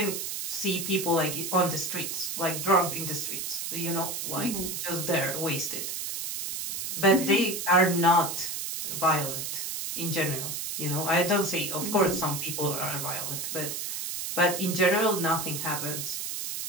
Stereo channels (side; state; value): right; noise; hiss, 4 dB below the sound